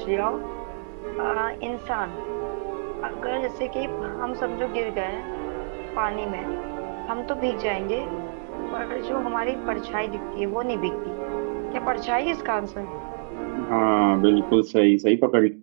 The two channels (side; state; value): left; silent; digital silence